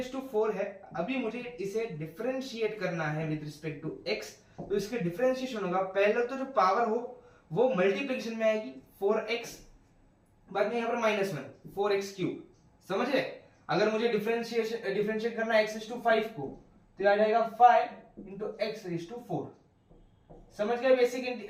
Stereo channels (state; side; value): identical; both; correlation 1.00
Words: to 4 है, अभी मुझे इसे डिफरेंशिएट करना है विद रिस्पेक्ट टू x, तो इसके डिफरेंशिएशन होगा, पहले तो जो पावर हो वो मल्टीप्लिकेशन में आएगी 4x, बाद में यहाँ पर -1 4x क्यूब। समझे? अगर मुझे डिफरेंशिएट करना है x रेज टू 5 को, तो आ जाएगा 5 इंटू x रेज टू 4। समझ गए